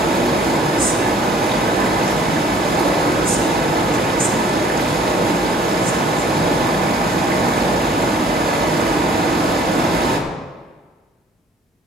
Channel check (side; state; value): both; normal; correlation 0.57